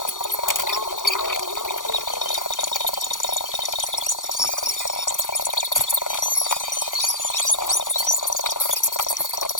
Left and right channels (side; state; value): right; late; 0.88 ms